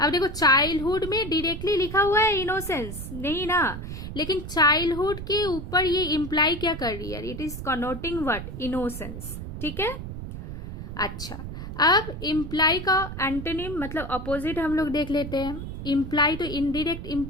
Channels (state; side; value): noise; right; rumble, 8 dB below the sound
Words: देखो चाइल्डहुड में डायरेक्टली लिखा हुआ है इनोसेंस नहीं ना, लेकिन चाइल्डहुड के ऊपर ये इम्प्लाई क्या कर रही है? It is connoting what? Innocence, ठीक है। अच्छा, अब इम्प्लाई का एंटोनिम मतलब अपोजिट हम लोग देख लेते हैं। इम्प्लाई तो इनडायरेक्ट